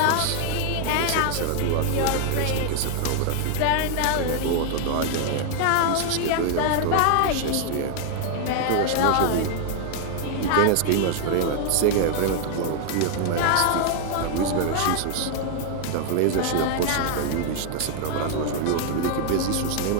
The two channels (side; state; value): both; different; correlation 0.00